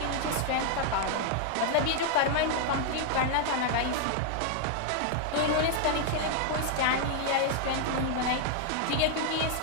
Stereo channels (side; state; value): both; different; correlation 0.00